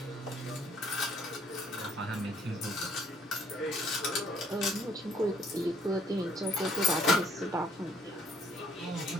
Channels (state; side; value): normal; both; correlation 0.63